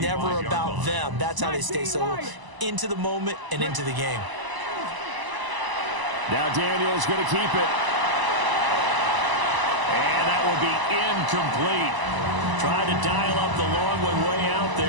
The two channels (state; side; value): late; left; 1.0 ms